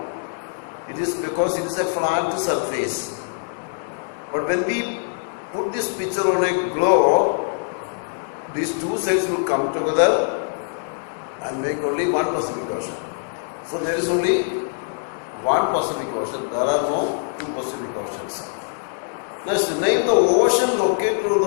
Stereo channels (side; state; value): right; silent; digital silence